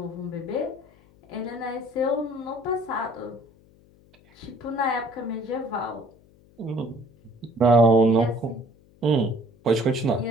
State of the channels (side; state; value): left; noise; hum, 28 dB below the sound